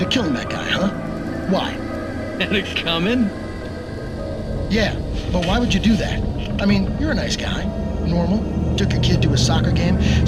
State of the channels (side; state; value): both; identical; correlation 1.00